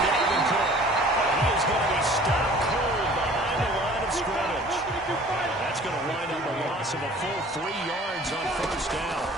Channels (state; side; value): normal; both; correlation 0.49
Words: Dalvin Cook. And he is going to be stopped cold behind the line of scrimmage. That's going to wind up a loss of a full 3 yards on 1st down.